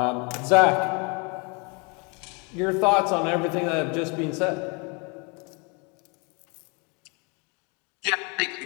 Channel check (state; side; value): quieter; right; 32.0 dB